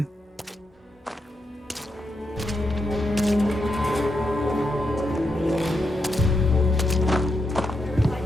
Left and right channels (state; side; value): normal; both; correlation 0.84